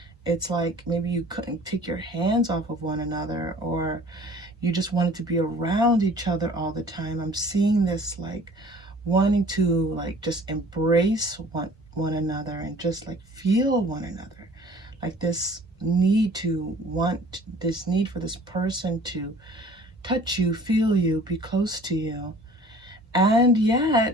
It's like maybe you couldn't take your hands off of one another, or you just wanted to be around each other all the time. I'm seeing this like wanting to like just embrace one another and just like feel one another. Like this need to want, this need for this person to touch you, feel you, be close to you. And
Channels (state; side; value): normal; both; correlation 0.50